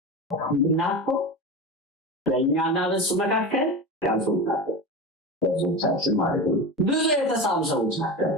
እና እኮ በእኛና በእሱ መካከል ያልሰዎች ናቸው፣ ብዙዎቻችን ማለት ነው። ብዙ የተሳሉ ሰዎች ናቸው።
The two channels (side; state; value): both; normal; correlation 0.24